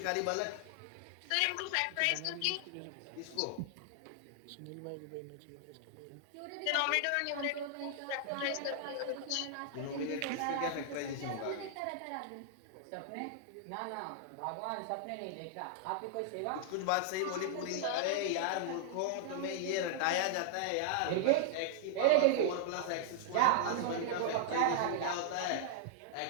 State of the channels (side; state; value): both; different; correlation 0.00